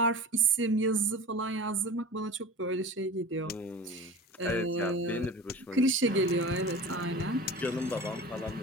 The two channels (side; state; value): both; normal; correlation 0.35